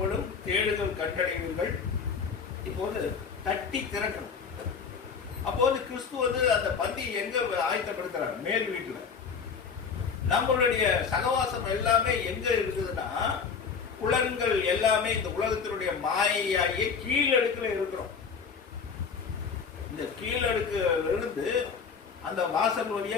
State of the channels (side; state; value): right; quieter; 5.9 dB